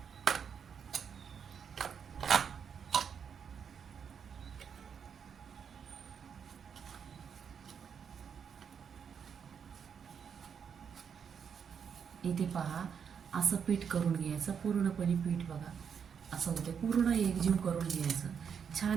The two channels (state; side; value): quieter; left; 7.1 dB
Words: इथे पहा, असं पीठ करून घ्यायचं. पूर्णपणे पीठ बघा असं होतं, पूर्ण एकजीव करून घ्यायचं.